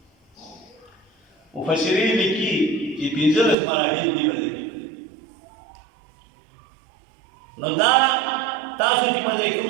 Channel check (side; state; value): left; drops out; at 3.6 s